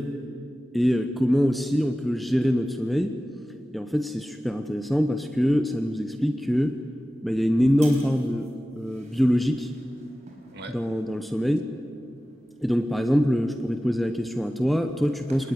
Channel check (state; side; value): normal; both; correlation 0.96